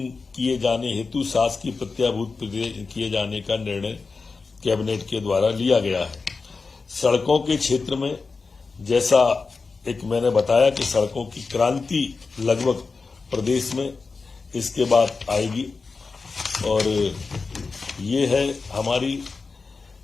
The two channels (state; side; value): quieter; right; 4.4 dB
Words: किए जाने हेतु शासकीय प्रत्याभूत किए जाने का निर्णय कैबिनेट के द्वारा लिया गया है। सड़कों के क्षेत्र में जैसा एक मैंने बताया कि सड़कों की क्रांति लगभग प्रदेश में इसके बाद आएगी, और ये है हमारी